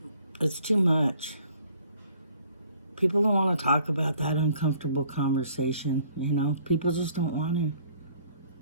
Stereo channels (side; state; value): both; inverted; correlation -0.59